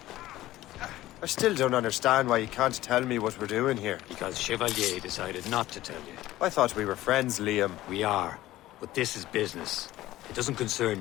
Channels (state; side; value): quieter; right; 15.8 dB